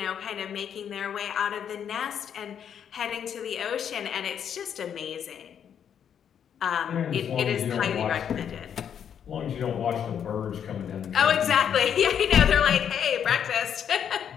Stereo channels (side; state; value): right; quieter; 8.5 dB